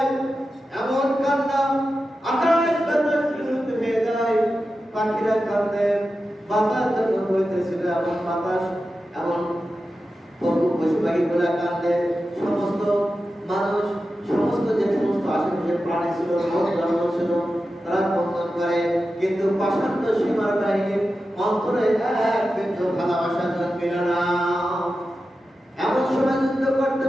এমন কান্না আকাশ বাতাস বিলুপ্ত হয়ে যায়। পাখিরা কাঁদে, বাতাস যখন বইতেছিল এমন বাতাস, এমন পশু পাখিগুলা কাঁদে। সমস্ত মানুষ, সমস্ত যে সমস্ত আশেপাশের প্রাণী ছিল, জন্ম ছিল, তারা কন্দন করে। কিন্তু পাষাণ্ড সীমার বাহিনীর অন্তরে এক বিন্দু ভালোবাসা জন্মিল না। এমন সময় যুদ্ধ করতে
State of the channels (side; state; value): both; normal; correlation 0.92